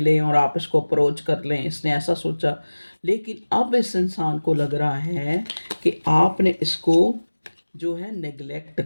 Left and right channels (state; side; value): inverted; both; correlation -1.00